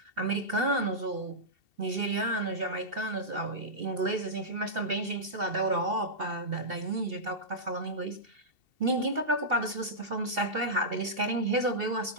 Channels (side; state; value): left; late; 2.7 ms